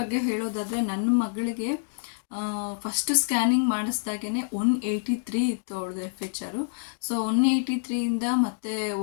ಹೇಳೋದಾದರೆ ನನ್ನ ಮಗಳಿಗೆ ಫಸ್ಟ್ ಸ್ಕ್ಯಾನಿಂಗ್ ಮಾಡಿಸ್ದಾಗೇ 183 ಇತ್ತು ಅವಳದು FHR. ಸೊ 183ಇಂದ ಮತ್ತೆ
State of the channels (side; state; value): right; silent; digital silence